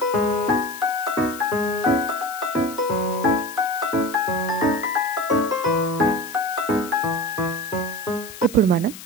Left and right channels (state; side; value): noise; left; hiss, 15 dB below the sound